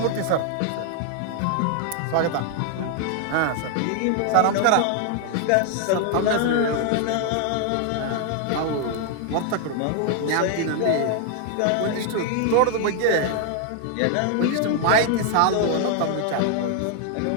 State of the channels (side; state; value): both; different; correlation 0.00